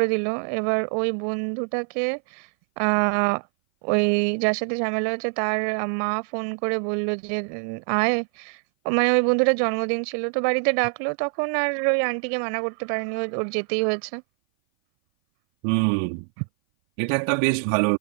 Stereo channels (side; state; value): left; silent; 57 dB below the other